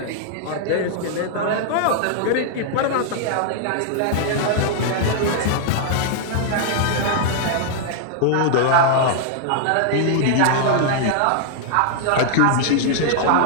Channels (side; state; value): both; different; correlation -0.01